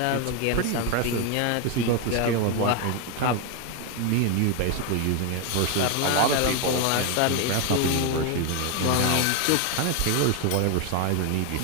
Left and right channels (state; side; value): different; both; correlation 0.01